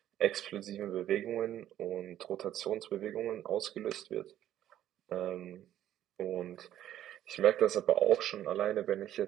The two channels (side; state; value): left; quieter; 12.0 dB